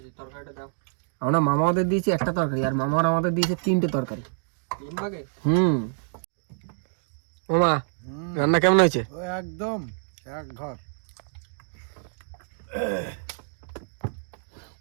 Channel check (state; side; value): silent; left; digital silence